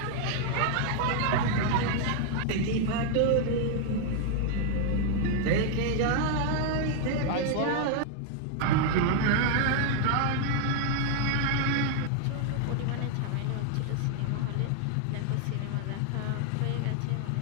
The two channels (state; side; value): different; both; correlation 0.00